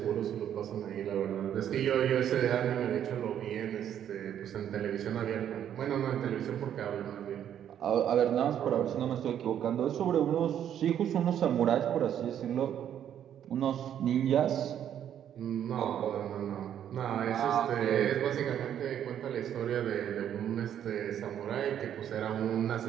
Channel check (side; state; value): left; quieter; 9.9 dB